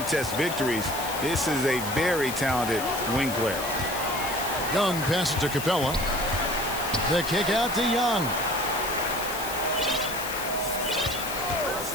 victories. This is a very talented wing player. Young passes to Capella. The kick out to Young.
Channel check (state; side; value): noise; left; hiss, 8 dB below the sound